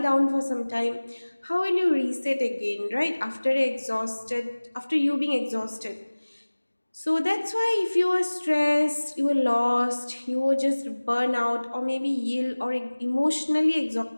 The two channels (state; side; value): inverted; both; correlation -1.00